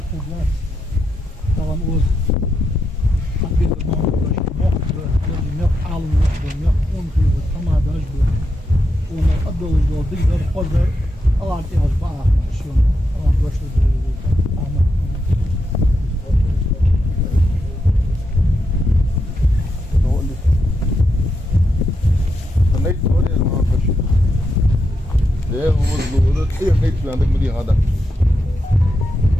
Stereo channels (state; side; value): normal; both; correlation 0.84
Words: da gəl. Tamam o bir məmurdaş, yox alım yox, on xeyri, tamadaj bu. Ona adoluz digər xodar, artıq az bağlı, şunu, başlı دي غدا